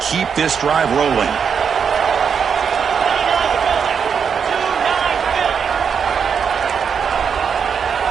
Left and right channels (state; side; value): quieter; left; 6.8 dB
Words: keep this drive rolling.